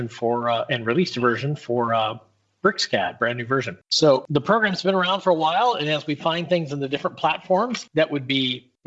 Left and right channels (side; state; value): both; identical; correlation 1.00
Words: for and released a version for BricsCAD, brand new version. So the program's been around for a while, and as we find things in the different platforms that would be